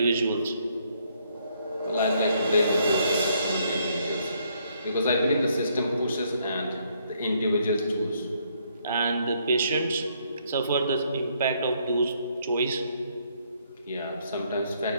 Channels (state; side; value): inverted; both; correlation -0.70